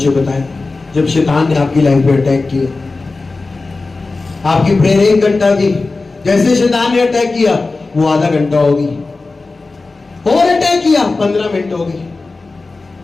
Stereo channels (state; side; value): quieter; right; 3.6 dB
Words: बताएं? जब शैतान ने आपकी लाइफ में अटैक किया, आपकी प्रेयर 1 घंटा थी, जैसे शैतान ने अटैक किया वो आधा घंटा होगी, और अटैक किया 15 मिनट होगी,